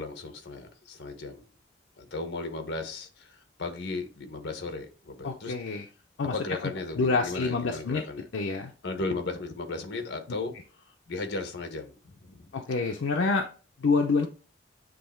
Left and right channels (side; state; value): right; quieter; 3.4 dB